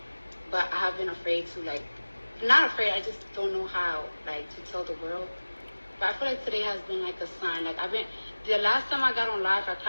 but I have been afraid to not afraid. I just don't know how to tell the world. But I feel like today has been like a sign. The last time I got on live, I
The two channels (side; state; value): both; inverted; correlation -1.00